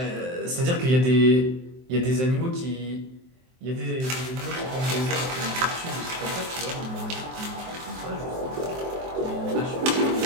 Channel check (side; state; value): left; late; 23 ms